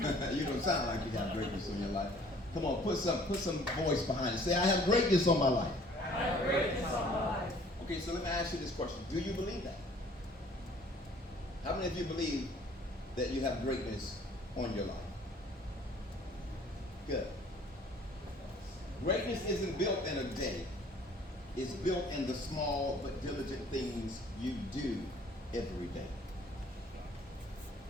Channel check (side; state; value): both; normal; correlation 0.55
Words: don't sound like you got greatness on your life. Come on, put some voice behind it. Say, I have greatness on my life. I have greatness on my life. Okay, so let me ask you this question. Do you believe that? How many of you believe that you have greatness on your life? Good. Greatness isn't built in a day. It's built in the small but diligent things you do every day.